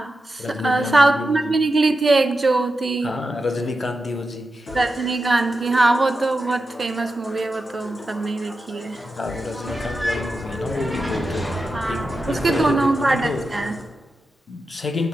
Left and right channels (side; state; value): both; normal; correlation 0.90